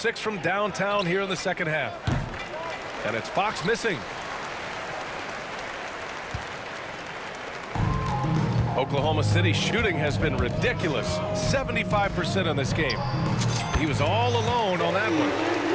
from downtown here in the second half. And it's Fox missing. Oklahoma City shooting has been ridiculous. 75% in this game. He was all alone on that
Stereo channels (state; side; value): identical; both; correlation 1.00